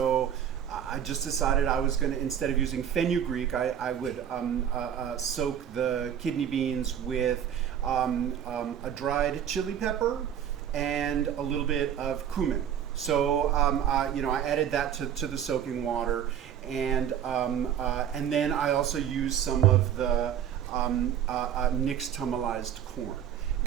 I just decided I was going to, instead of using fenugreek, I would soak the kidney beans with a dried chili pepper and a little bit of cumin. So I added that to the soaking water, and then I also used some of the nixtamalized corn.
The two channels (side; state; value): left; quieter; 9.4 dB